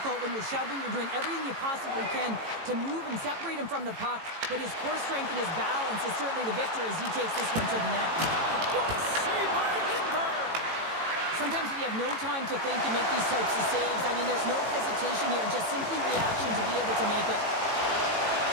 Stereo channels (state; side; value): late; left; 18 ms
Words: when you're shoving. You're doing everything you possibly can to move and separate him from the puck. But his core strength and his balance is certainly the victor as he takes this one to the net. What a save by Lindbergh! Sometimes when you have no time to think and make these types of saves, I mean, there's no hesitation here, just simply reaction to be able to make it.